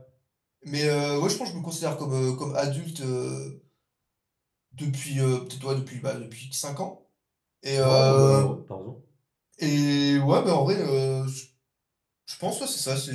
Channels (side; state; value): both; identical; correlation 1.00